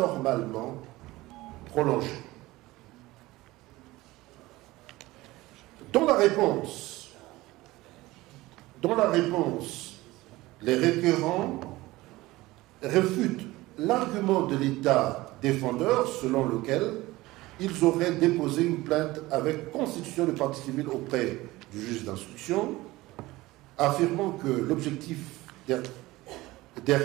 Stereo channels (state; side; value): quieter; left; 19.1 dB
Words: prolongés. Dans la réponse, les requérants réfutent l'argument de l'État défendeur selon lequel ils auraient déposé une plainte avec constitution de partie civile auprès du juge d'instruction, affirmant que l'objectif